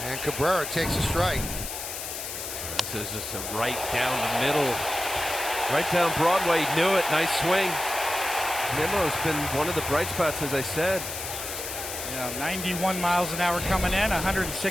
And Cabrera takes a strike. This is just a right down the middle. Right down Broadway. He knew it. Nice swing. Nimmo's been one of the bright spots, as I said. Yeah, 91 miles an hour coming in,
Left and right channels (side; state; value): left; noise; hiss, 7 dB below the sound